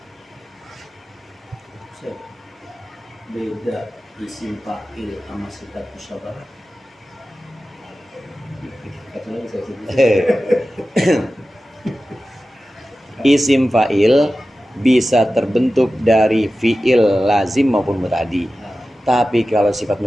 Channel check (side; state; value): both; normal; correlation 0.94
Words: Beda isim fa'il sama sifat musyabbahat. Isim fa'il bisa terbentuk dari fi'il lazim maupun muta'addi. Tapi kalau sifat